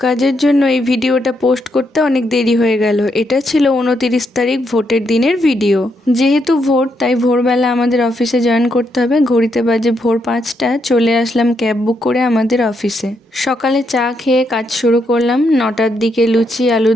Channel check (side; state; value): both; normal; correlation 0.78